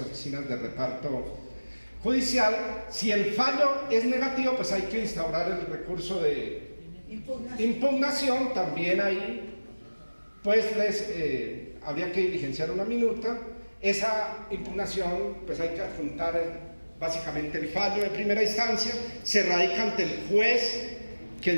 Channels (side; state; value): both; inverted; correlation -1.00